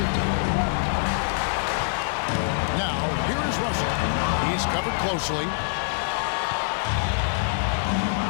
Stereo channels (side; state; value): right; silent; 62 dB below the other